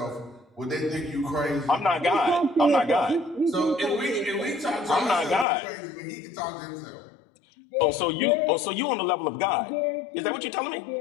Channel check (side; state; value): right; drops out; at 5.5 s